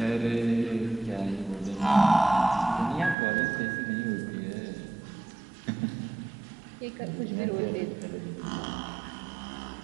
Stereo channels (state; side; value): drops out; left; at 3.2 s